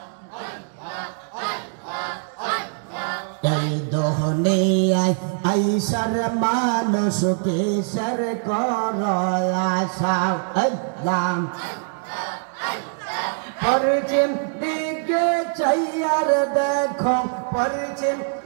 এই দুনিয়ায় আইসার মানুষ কিসের কর আশা। আল্লাহ পরিচিম দিকে চাইয়ার দেখো, পরিচিম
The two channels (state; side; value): silent; left; digital silence